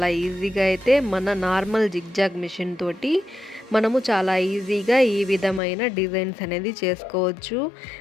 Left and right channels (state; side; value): drops out; right; at 5.6 s